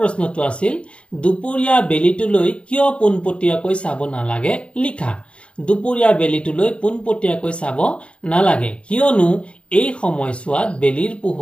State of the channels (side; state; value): right; late; 0.058 ms